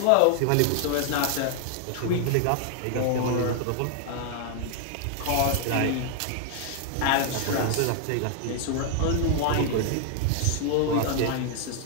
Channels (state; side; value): different; both; correlation 0.00